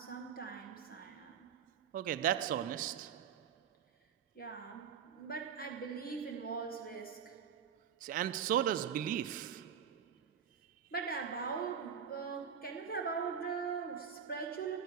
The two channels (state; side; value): quieter; left; 7.9 dB